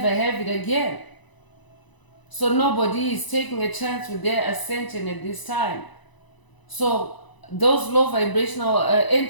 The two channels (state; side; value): late; right; 1.0 ms